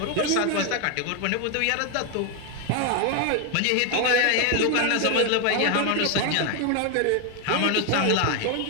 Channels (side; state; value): both; different; correlation 0.01